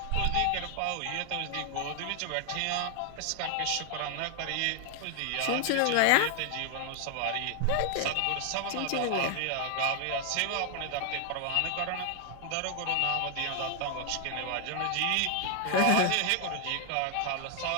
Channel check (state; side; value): different; both; correlation 0.00